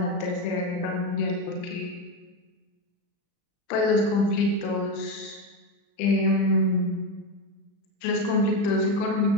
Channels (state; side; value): late; right; 35 ms